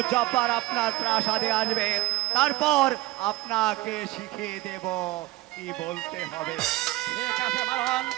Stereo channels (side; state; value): left; quieter; 18.9 dB